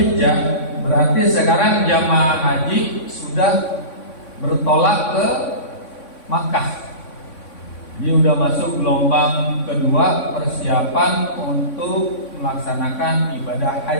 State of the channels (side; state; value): right; late; 3.6 ms